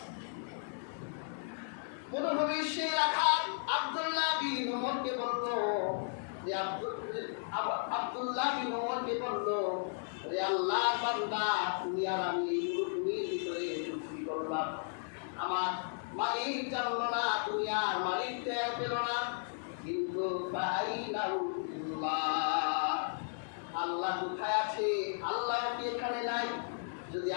মরুভূমির সেই রাখাল আব্দুল্লাহ বিন উমরকে বলল যে আব্দুল্লাহ বিন উমরকে বলল যে আল্লাহ বান্দা, তুমি আর আমি এই মরুভূমির ভিতরে চুক্তি করলাম, আমার মালিক জানলো না, তুমি আর মালিক টের পেল না, কিন্তু আল্লাহ কোথায় আছে? আল্লাহ কি এখানে নাই? যদি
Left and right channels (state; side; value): silent; right; digital silence